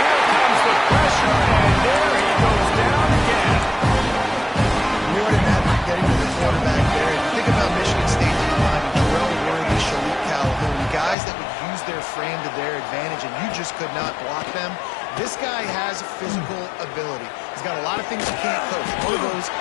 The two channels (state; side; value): drops out; right; at 11.2 s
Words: comes the pressure, and there he goes down again. More than that, getting to the quarterback there. Think about Michigan State in the line. Terrell Worthy, Shalik Calhoun, guys that would use their frame to their advantage, and you just could not block them. This guy has